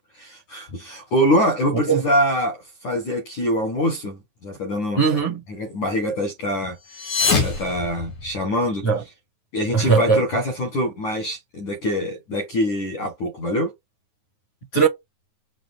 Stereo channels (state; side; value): late; right; 9.5 ms